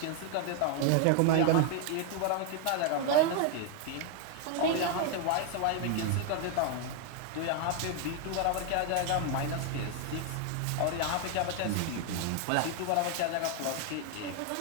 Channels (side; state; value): both; different; correlation 0.00